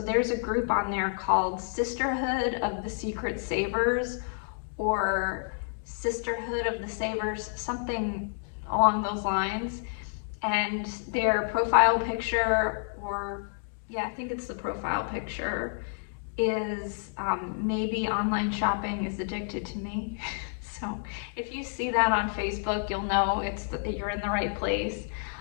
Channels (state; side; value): silent; right; digital silence